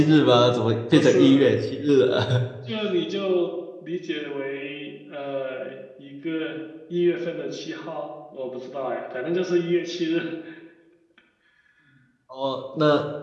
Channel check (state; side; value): identical; both; correlation 1.00